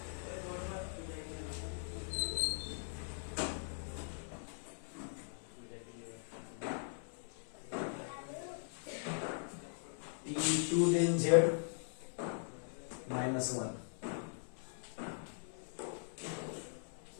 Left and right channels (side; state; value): right; silent; 51 dB below the other